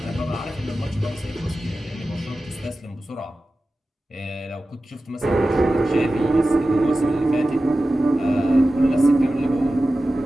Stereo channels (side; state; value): both; normal; correlation 0.95